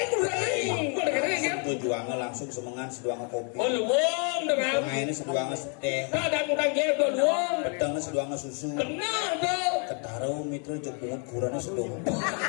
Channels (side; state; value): right; quieter; 39.8 dB